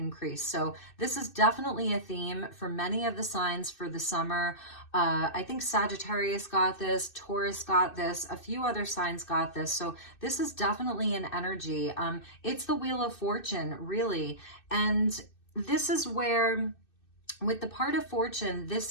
So this is definitely a theme for many of the signs for the summer. I think Sagittarius got this, Taurus got this, a few other signs got this. So this is definitely an energy. It's the Wheel of Fortune, really. And this is where, with the part of fortune,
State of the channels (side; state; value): right; late; 2.6 ms